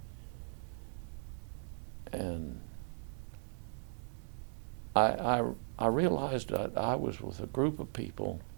And I realized that I was with a group of people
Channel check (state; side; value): silent; left; digital silence